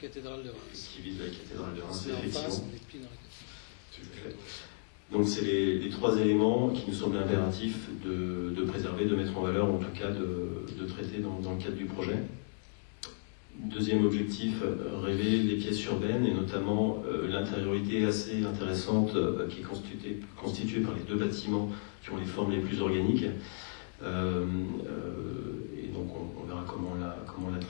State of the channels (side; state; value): right; silent; digital silence